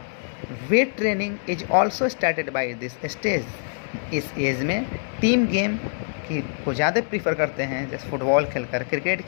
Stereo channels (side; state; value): right; silent; 62 dB below the other